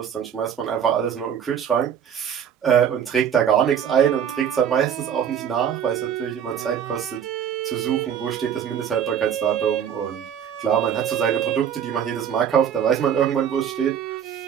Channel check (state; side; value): quieter; left; 8.5 dB